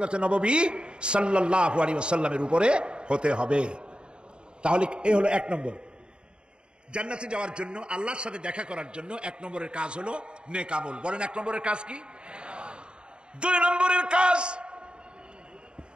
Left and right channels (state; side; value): late; left; 0.052 ms